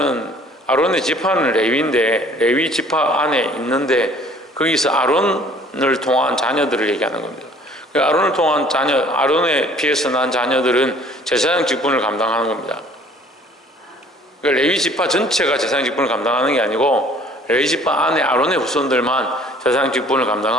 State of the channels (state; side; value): normal; both; correlation 0.54